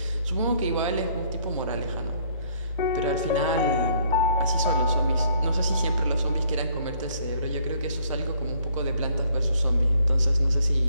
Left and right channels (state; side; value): inverted; both; correlation -0.64